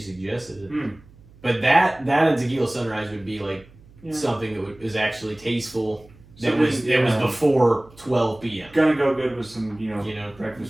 suggested it. Hmm. But that and tequila sunrise would be like Yeah. something that was actually tasteful. That Something, was yeah. before 12 p.m. Gonna go good with some, You know.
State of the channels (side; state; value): right; noise; hum, 25 dB below the sound